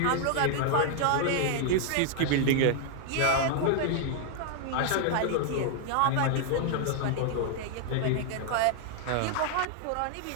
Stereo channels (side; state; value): both; different; correlation 0.00